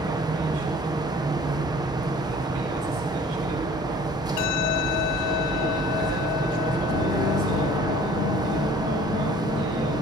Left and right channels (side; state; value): both; normal; correlation 0.50